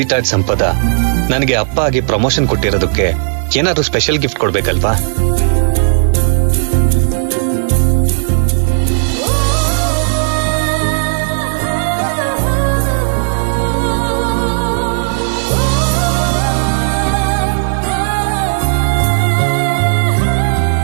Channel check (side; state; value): left; silent; digital silence